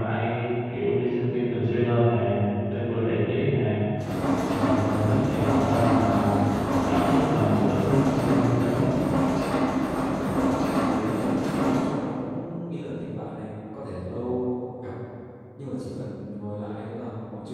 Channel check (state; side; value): identical; both; correlation 1.00